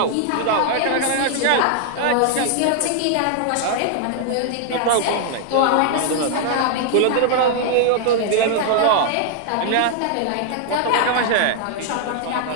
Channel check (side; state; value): both; different; correlation 0.00